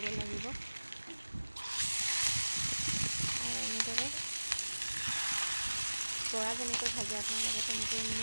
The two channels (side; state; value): both; inverted; correlation -1.00